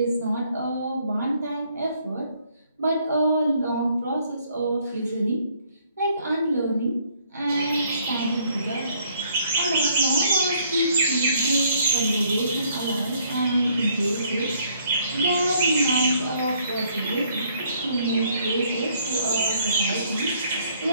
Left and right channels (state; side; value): inverted; both; correlation -0.65